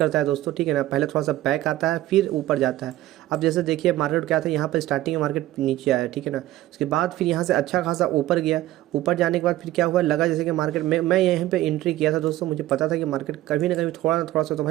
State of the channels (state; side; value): quieter; left; 15.3 dB